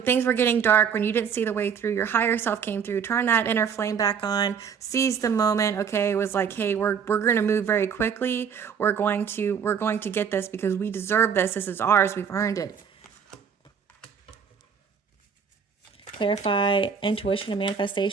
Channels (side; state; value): left; quieter; 7.0 dB